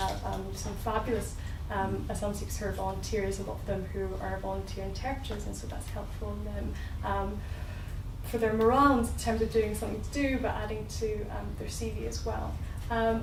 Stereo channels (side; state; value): both; identical; correlation 1.00